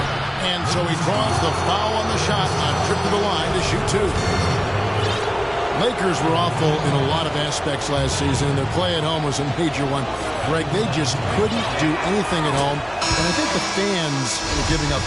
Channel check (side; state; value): both; identical; correlation 1.00